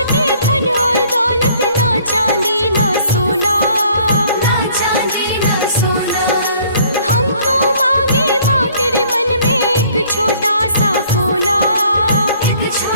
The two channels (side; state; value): both; inverted; correlation -0.58